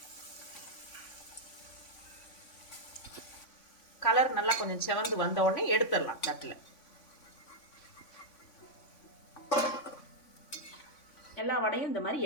கலர் நல்லா கொஞ்சம் செவந்து வந்த உடனே எடுத்துடலாம் தட்டில். எல்லா வடையும் இந்த மாதிரி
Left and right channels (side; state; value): right; late; 3.5 ms